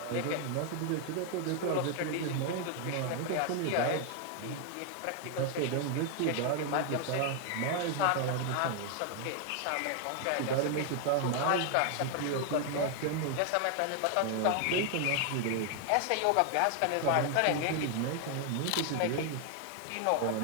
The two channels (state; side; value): different; both; correlation 0.00